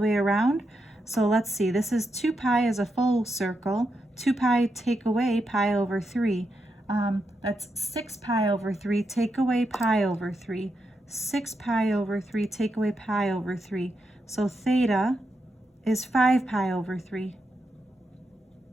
around. So let's see, this is 2 pi is a full circle. 2 pi take away pi over 3. That's 6 pi over 3, take away pi over 3. 6 pi over 3, take away pi over 3. So theta is 5 pi over 3.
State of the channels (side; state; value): both; normal; correlation 0.84